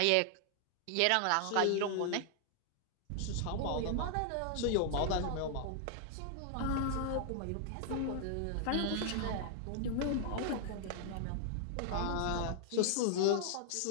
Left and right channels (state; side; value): different; both; correlation 0.00